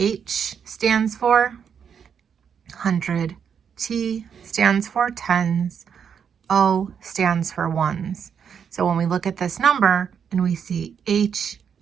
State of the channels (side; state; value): left; quieter; 7.4 dB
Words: stands for 100. T stands for tens. O stands for ones. So when we look at this number and we see